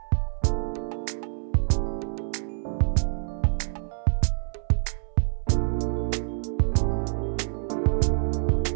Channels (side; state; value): left; silent; 61 dB below the other